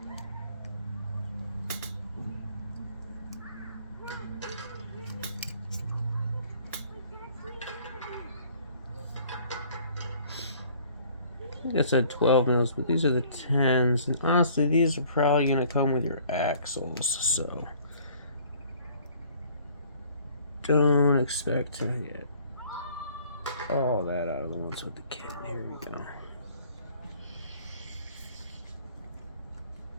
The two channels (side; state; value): both; inverted; correlation -0.55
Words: I think I said 12mm, but these are the 10s, and honestly these are probably going to come with your axles, so don't expect to get all that out of the ones with the kit. Here we go.